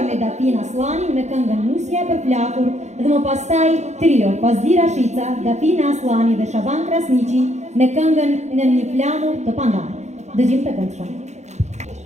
me Dafin Aslani me këngën Musja për flakur dhe më pastaj trio Pazdira Shica, Dafin Aslani dhe Shaban Krasniqi me këngën Në një flamur të pandarë. Dëgjim të këndshëm.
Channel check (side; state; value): left; late; 0.33 ms